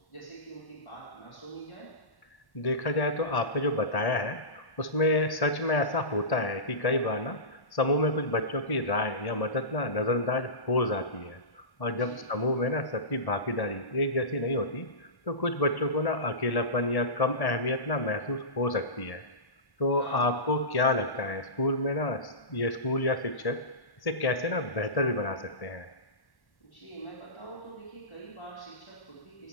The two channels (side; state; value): right; late; 1.1 ms